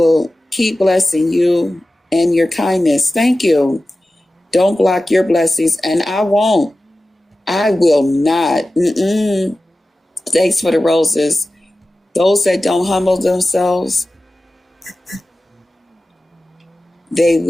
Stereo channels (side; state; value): both; normal; correlation 0.95